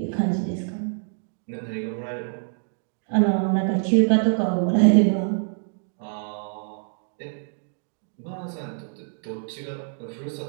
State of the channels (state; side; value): silent; left; digital silence